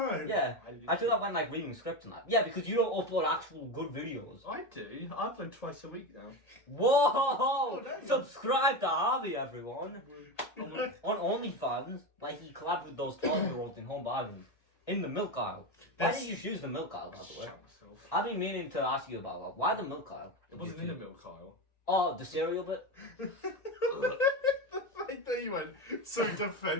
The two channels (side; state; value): right; late; 2.1 ms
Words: Yeah, I do that when like reading scripts and that. Yeah, because you don't upload actual good videos. I do. I upload twice a week now. Whoa! damn. Subscribe to Harvey, everyone. On OnlyFans, like he collabed with those 12-year-olds in Home Bargains. In the milk aisle. Why did you choose the milk aisle, by the way? Shut myself. I've been meaning to ask you about that. Why the milk aisle? It wasn't in the milk aisle. Oh, the cereal bit? Like that you went so